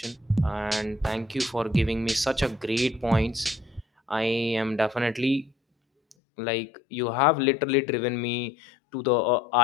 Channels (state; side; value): drops out; right; at 6.2 s